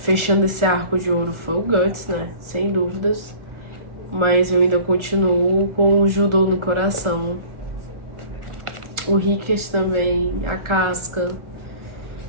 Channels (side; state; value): left; late; 1.4 ms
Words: esse arco de ouro, foi o Guts, né, sem dúvidas. Mas eu ainda continuo com o judô no coração. O Rickert também, a Casca.